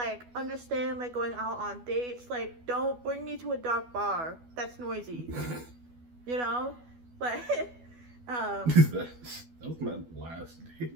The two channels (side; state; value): left; late; 12 ms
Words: understand, like, going out on dates, like, don't bring me to a dark bar that's noisy, you know? Like, That was my last